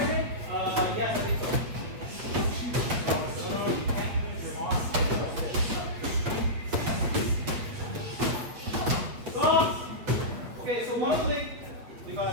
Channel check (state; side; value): late; left; 8.7 ms